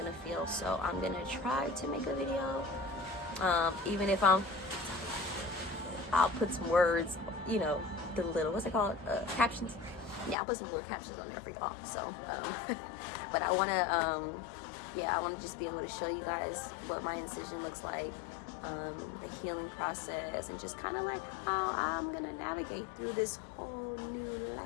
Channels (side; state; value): right; drops out; at 10.4 s